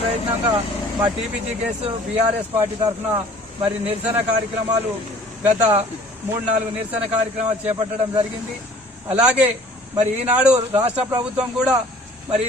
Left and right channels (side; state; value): both; normal; correlation 0.51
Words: ప్రయత్నంగా మా టీపీజీకేఎస్ బీఆర్ఎస్ పార్టీ తరఫున మరి నిరసన కార్యక్రమాలు గత 3-4 నిరసన కార్యక్రమాలు చేపట్టడం జరిగింది. అలాగే మరి ఈనాడు రాష్ట్ర ప్రభుత్వం కూడా మరి